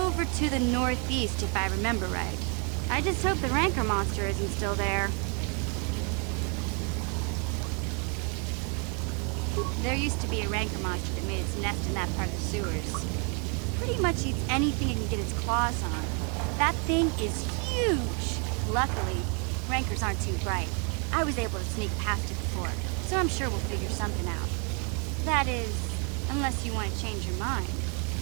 to the northeast, if I remember right. I just hope the Rancor monster isn't still there. There used to be a Rancor monster that made its nest in that part of the sewers. Pretty much eats anything it can get its claws on. That thing is huge! Luckily, Rancors aren't too bright. I was able to sneak past it before, so I'm sure we'll figure something out. That is, unless you want to change your mind.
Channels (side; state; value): left; quieter; 36.2 dB